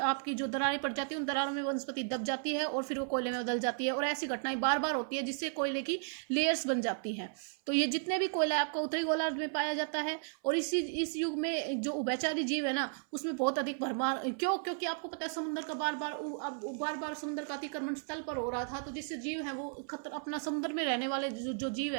आपकी जो दरारें पड़ जाती है, उन दरारों में वनस्पति दब जाती है और फिर वो कोयले में बदल जाती है। और ऐसी घटनाएं बार बार होती है जिससे कोयले की लेयर्स बन जाती हैं। तो ये जितने भी कोयला आपका उत्तरी गोलार्ध में पाया जाता है। और इस युग में जो उभयचारी जीव है ना, उसमें बहुत अधिक भरमार। क्योंकि आपको पता है समुद्र का बार बार अब बार बार समुद्र का अतिक्रमण स्थल पर हो रहा था, तो जिससे जीव है वो अपना समुद्र में रहने वाले जो जीव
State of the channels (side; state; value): left; silent; 55 dB below the other